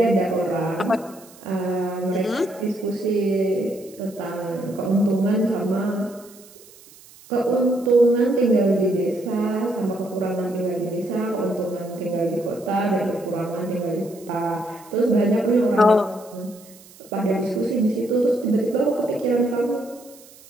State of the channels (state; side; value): noise; right; hiss, 23 dB below the sound